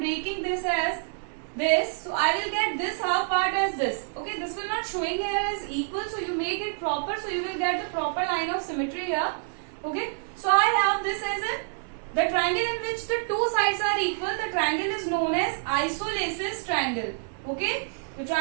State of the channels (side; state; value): left; silent; digital silence